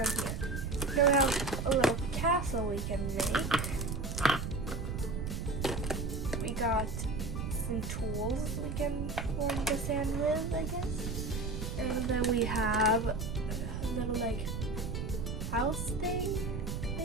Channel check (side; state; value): right; noise; rumble, 3 dB below the sound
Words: here. Here we have a little castle we can make. We got some tools we can form the sand with, I guess. And then we have a little like house thing